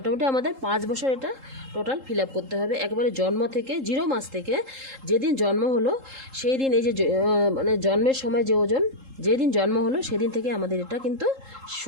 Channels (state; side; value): late; left; 3.7 ms